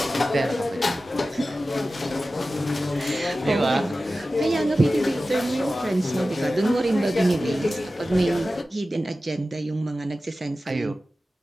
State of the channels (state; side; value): normal; both; correlation 0.95